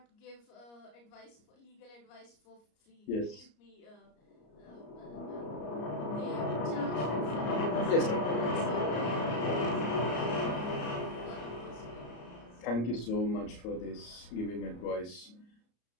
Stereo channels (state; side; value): late; right; 34 ms